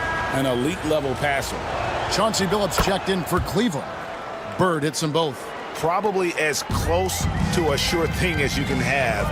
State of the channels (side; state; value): both; identical; correlation 1.00